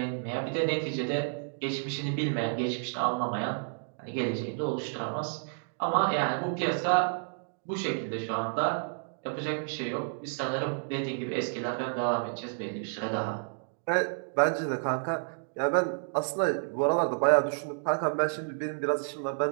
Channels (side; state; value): left; silent; digital silence